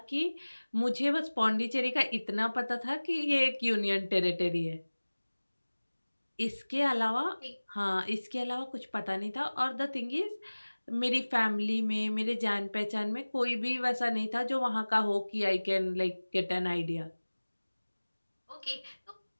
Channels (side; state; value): both; inverted; correlation -1.00